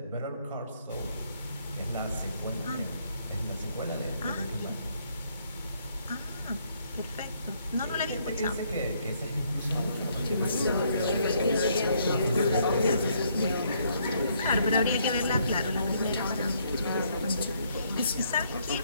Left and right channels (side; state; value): both; inverted; correlation -0.70